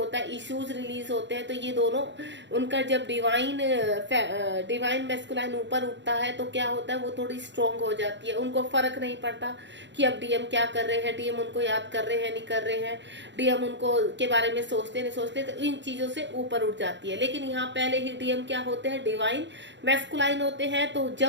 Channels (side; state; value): left; late; 0.52 ms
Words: है, इश्यूज रिलीज होते हैं, तो ये दोनों उनका जब डिवाइन मैस्कुलाइन ऊपर उठता है तो क्या होता है, वो थोड़ी स्ट्रोंग हो जाती है। उनको फर्क नहीं पड़ता कि अब डीएम क्या कर रहे हैं, डीएम उनको याद कर रहे हैं नहीं कर रहे हैं, डीएम उनको के बारे में सोचते नहीं सोचते, तो इन चीजों से ऊपर उठ जाती है। लेकिन यहाँ पहले ही डीएम क्या होते हैं, डिवाइन मैस्कुलाइन होते हैं। तो